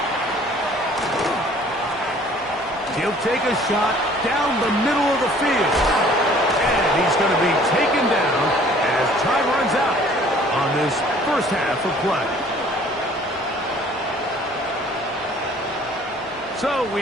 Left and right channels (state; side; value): normal; both; correlation 0.54